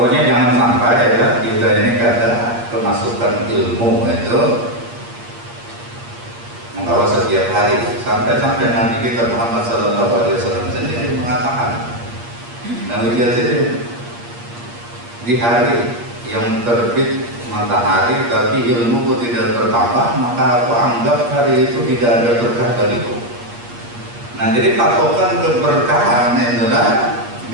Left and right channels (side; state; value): left; late; 8.5 ms